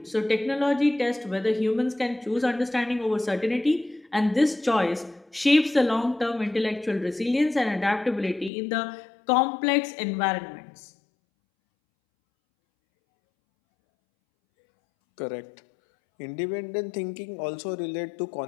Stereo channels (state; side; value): drops out; right; at 8.5 s